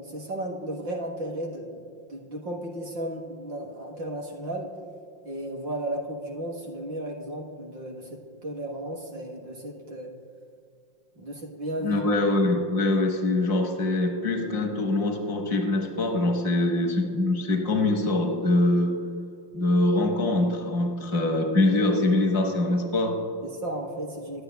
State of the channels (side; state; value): left; late; 5.7 ms